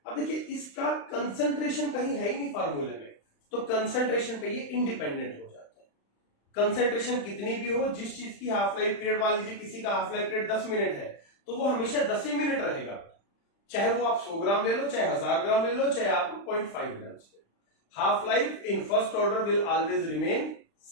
अब देखिए इसका कंसंट्रेशन कहीं है ही नहीं फॉर्मूले में, तो कंसंट्रेशन पे ये इंडिपेंडेंट हो जाता है। कंसंट्रेशन कितनी भी हो, जिस चीज की हाफ लाइफ पीरियड, मान लीजिए किसी का हाफ लाइफ पीरियड 10 मिनट है तो वो हमेशा 10 ही मिनट रहेगा, चाहे वो आप 100 ग्राम ले लो, चाहे 1000 ग्राम ले लो, चाहे आप 0.5 ग्राम ले लो। Half life in first order will always remain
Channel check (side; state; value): right; late; 35 ms